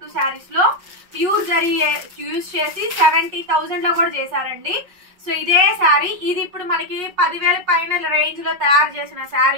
శారీస్ లో ప్యూర్ జరీ యూజ్ చేసి 70,000 లో కూడా చేశారండి. సో ఇదే శారీ ఇది ఇప్పుడు మనకి 10,000 పైన రేంజ్ లో తయారు చేసిన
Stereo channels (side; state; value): left; late; 5.5 ms